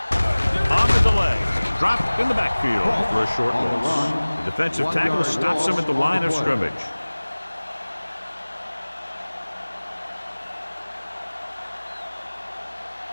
On the delay. Dropped in the backfield for a short loss. The defensive tackle stops him at the line of scrimmage.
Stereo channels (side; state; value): both; inverted; correlation -1.00